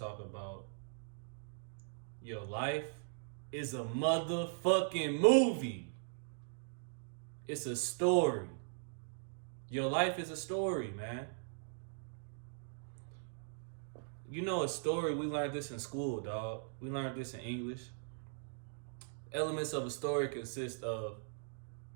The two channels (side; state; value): left; silent; digital silence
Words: about your life is a motherfucking movie. It's a story. Your life is a story, man. You know a story, we learned this in school, dog. We learned this in English. Elements of a story consist of